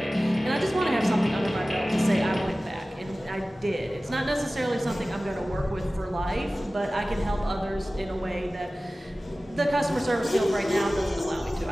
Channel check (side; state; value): both; normal; correlation 0.97